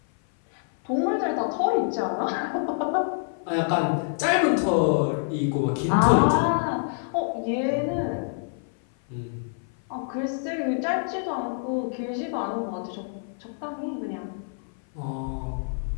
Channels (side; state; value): right; silent; 56 dB below the other